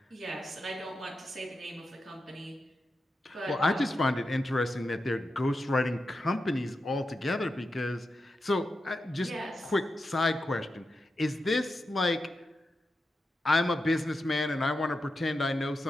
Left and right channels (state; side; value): normal; both; correlation 0.89